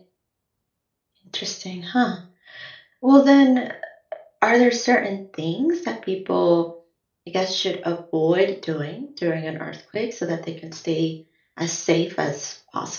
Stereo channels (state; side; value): identical; both; correlation 1.00